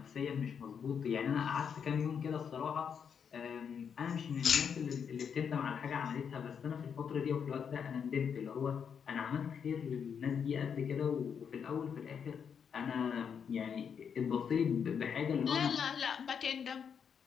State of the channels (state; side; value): quieter; right; 7.2 dB